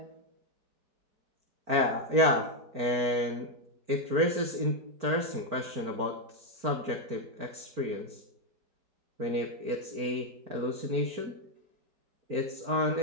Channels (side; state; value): left; late; 4.4 ms